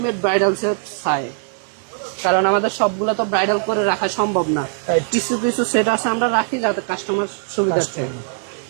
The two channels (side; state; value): left; silent; digital silence